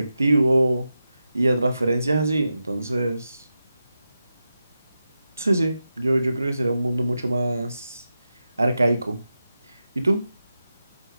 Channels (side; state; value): both; inverted; correlation -0.90